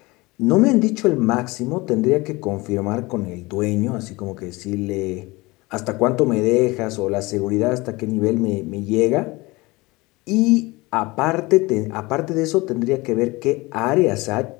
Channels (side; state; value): right; quieter; 22.7 dB